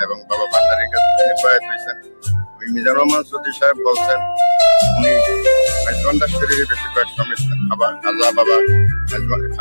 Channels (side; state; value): both; inverted; correlation -1.00